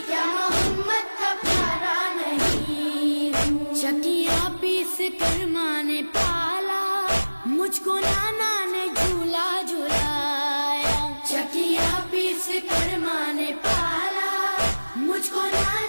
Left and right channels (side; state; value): both; inverted; correlation -1.00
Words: کیا محمد کا پیارا نہیں چکیاں پیس کر ماں نے پالا مجھ کو نانا نے جھولا جھلایا چکیاں پیس کر ماں نے پالا مجھ کو